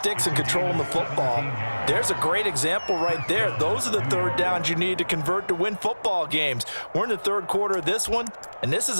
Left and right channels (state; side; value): inverted; both; correlation -1.00